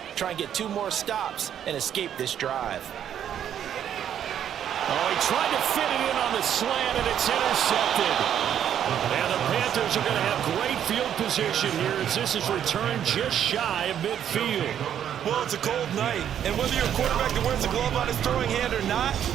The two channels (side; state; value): left; quieter; 9.7 dB